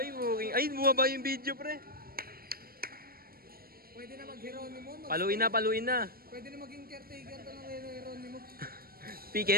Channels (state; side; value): late; left; 0.43 ms